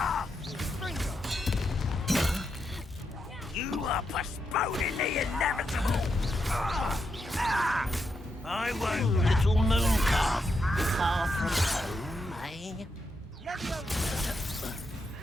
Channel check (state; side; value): normal; both; correlation 0.83